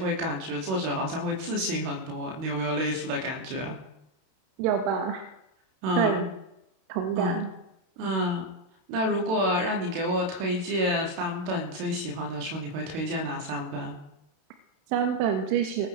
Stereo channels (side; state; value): left; late; 32 ms